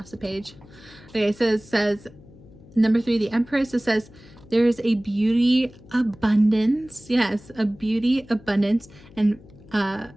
the page. Okay, so it says number 3, the Empress. It says there is a beauty abundance. Yes, a beauty abundance and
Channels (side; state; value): left; noise; hum, 22 dB below the sound